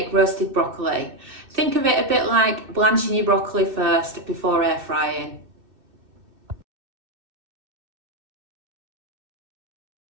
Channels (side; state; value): left; late; 2.7 ms